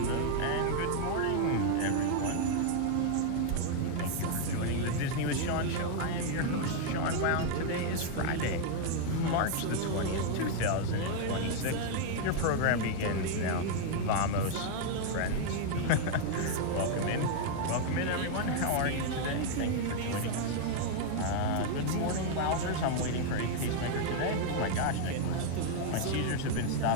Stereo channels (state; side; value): different; both; correlation 0.00